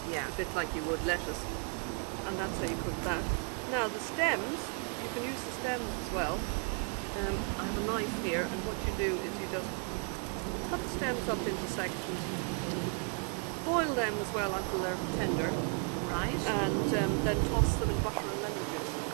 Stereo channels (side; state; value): left; quieter; 39.7 dB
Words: yeah. A bit like you would lettuce. And that's how you cook that. Now the stems, you can use the stems as well. I have a knife here, and what you do is you just cut the stems up into sections, boil them as well until they're tender, right? And then toss them in butter and lemon juice.